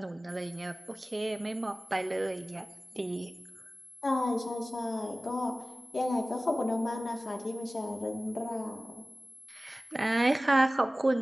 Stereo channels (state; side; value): normal; both; correlation 0.97